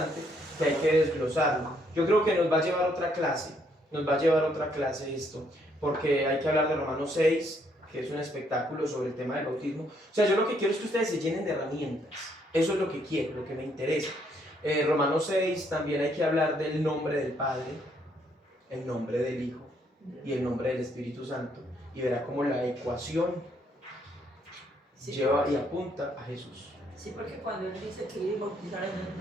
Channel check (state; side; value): normal; both; correlation 0.70